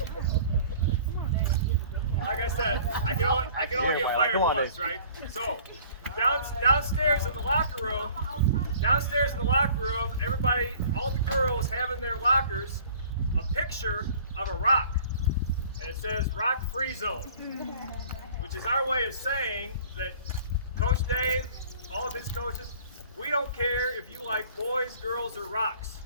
Like I said, I can only get fired once, right? So, downstairs in the locker room, everybody, all the girls have in their lockers a picture of a rock, and it says "Rock Free Zone," which is our way of saying that Coach Dave, all of his coaches, we don't care if you like boys, girls, or rocks.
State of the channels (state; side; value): inverted; both; correlation -0.50